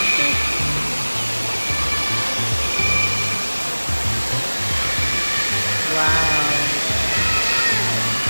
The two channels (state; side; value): inverted; both; correlation -1.00